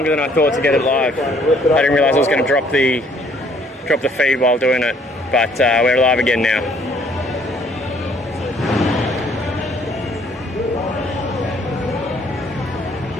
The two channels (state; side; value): normal; both; correlation 0.62